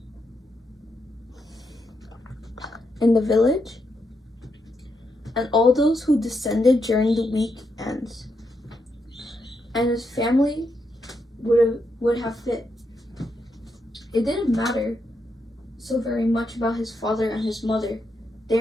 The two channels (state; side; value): normal; both; correlation 0.82